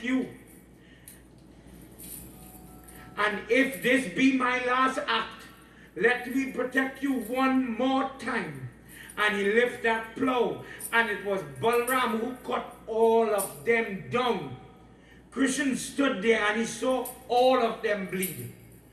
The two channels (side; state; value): both; identical; correlation 1.00